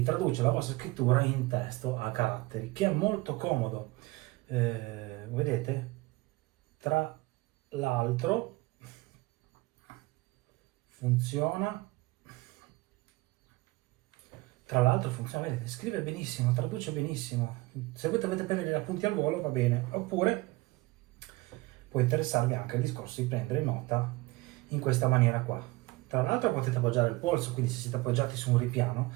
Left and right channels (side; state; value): left; quieter; 21.5 dB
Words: traduce la vostra scrittura in testo a caratteri, che è molto comodo. Vedete, tra l'altro funziona, vedete, scrive benissimo, traduce benissimo. Se voi dovete prendere gli appunti al volo va bene, oppure può interessarvi anche il discorso di prendere nota in questa maniera qua. Tra l'altro potete appoggiare il polso, quindi se siete appoggiati su un ripiano